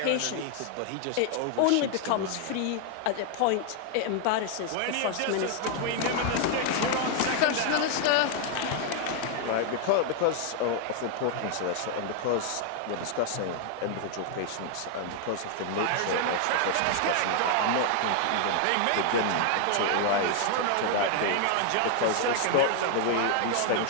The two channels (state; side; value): different; both; correlation 0.00